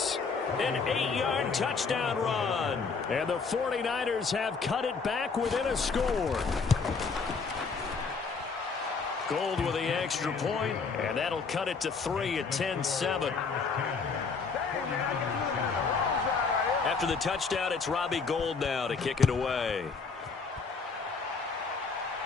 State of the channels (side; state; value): right; quieter; 4.9 dB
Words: an 8-yard touchdown run. And the 49ers have cut it back within a score. Gold with the extra point, and that'll cut it to 3 at 10-7. After the touchdown, it's Robbie Gould now to kick it away.